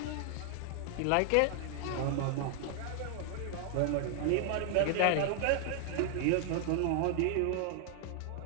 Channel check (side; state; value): both; different; correlation 0.00